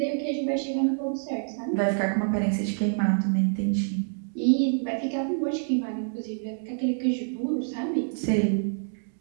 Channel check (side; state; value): left; silent; digital silence